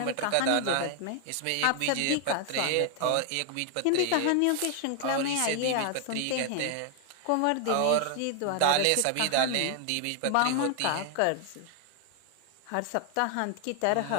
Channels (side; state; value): both; different; correlation 0.00